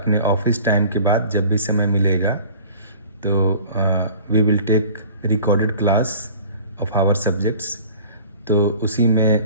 ऑफिस टाइम के बाद जब भी समय मिलेगा तो we will take recorded class of our subjects. तो उसी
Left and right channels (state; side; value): inverted; both; correlation -0.44